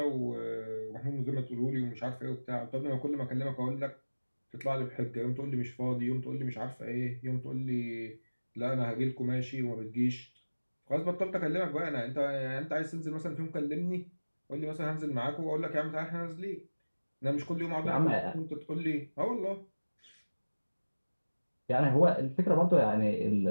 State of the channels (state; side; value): inverted; both; correlation -1.00